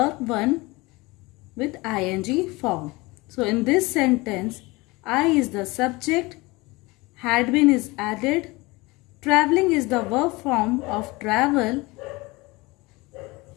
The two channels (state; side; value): quieter; right; 23.2 dB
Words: 1 with ing form. So in this sentence, I is the subject, had been is added, traveling is the verb form of travel.